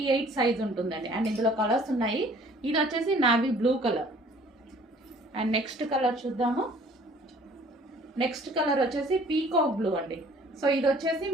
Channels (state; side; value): normal; both; correlation 0.54